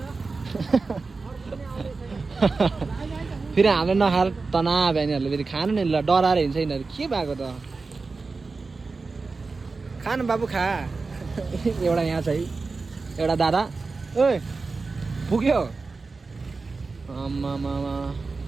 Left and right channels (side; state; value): left; quieter; 4.1 dB